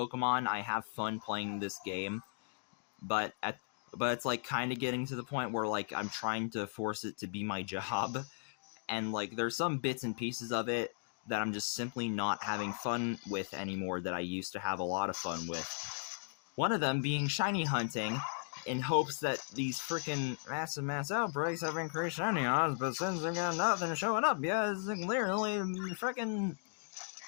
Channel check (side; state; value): right; silent; digital silence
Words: I have fun playing this game, but it's, like, kind of getting to the point where, like, I'm trying to force it to be my job, and, like, there's some bits and pieces of it that I'm just simply not having fun with anymore that I used to have a lot of fun with. One of them being shiny hunting, in hopes that these frickin' mass outbreaks have increased shiny odds, but since they've got nothing showing up, yeah, it's clearly frickin'...